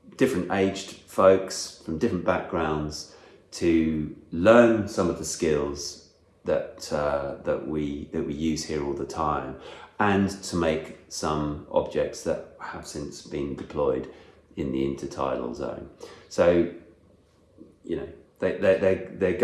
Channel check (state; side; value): identical; both; correlation 1.00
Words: different aged folks from different backgrounds to learn some of the skills that we use here all the time, and to make some objects that have since been deployed in the intertidal zone. So, they're